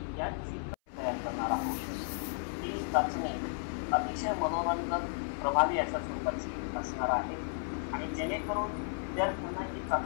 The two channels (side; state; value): right; silent; 55 dB below the other